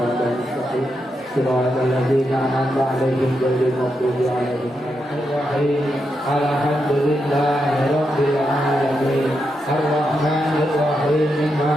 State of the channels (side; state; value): both; normal; correlation 0.84